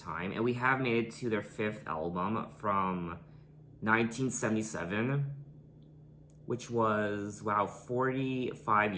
time, and we have made it to their fifth album from 1977, which was, wow, 45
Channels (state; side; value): identical; both; correlation 1.00